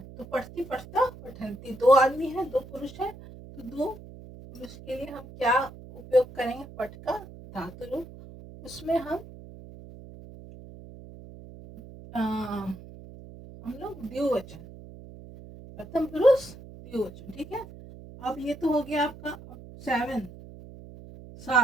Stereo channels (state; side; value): noise; right; hum, 16 dB below the sound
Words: तो पढ़ती, पढ़ता, पठंती, दो आदमी हैं, दो पुरुष हैं। तो दो पुरुष के लिए हम क्या उपयोग करेंगे, पठ का धातु रूप। उसमें हम लोग द्विवचन, प्रथम पुरुष द्विवचन, ठीक है। अब ये तो हो गया आपका।